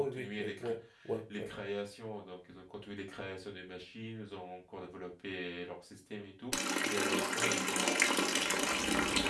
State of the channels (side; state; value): both; identical; correlation 1.00